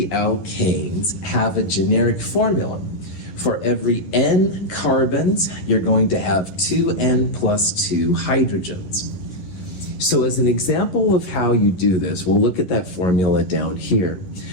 alkanes have a generic formula. For every N carbons, you're going to have 2N plus 2 hydrogens. So as an example of how you do this, we'll look at that formula down here.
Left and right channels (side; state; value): right; late; 11 ms